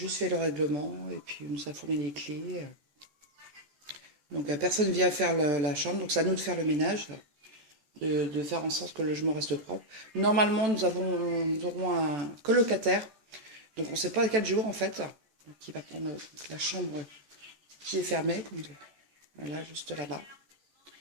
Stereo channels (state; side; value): late; left; 14 ms